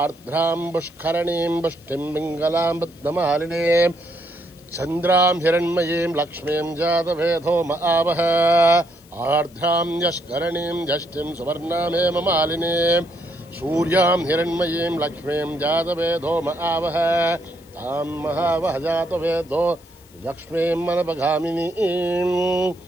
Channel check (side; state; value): left; noise; hiss, 27 dB below the sound